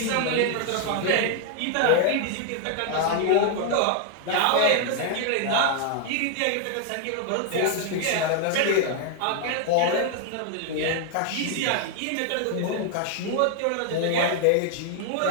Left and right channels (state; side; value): different; both; correlation 0.00